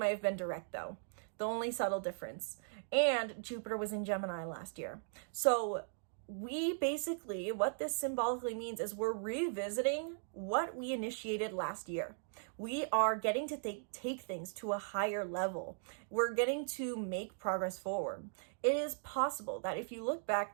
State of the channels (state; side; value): silent; left; digital silence